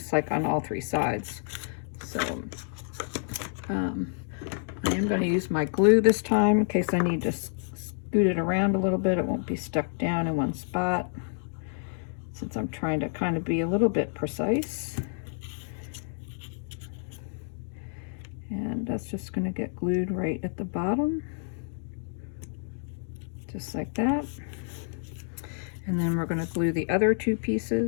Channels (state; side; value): silent; right; 59 dB below the other